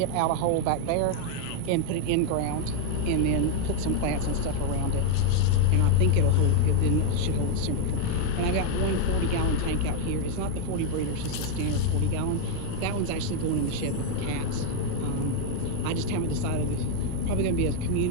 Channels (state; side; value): different; both; correlation 0.00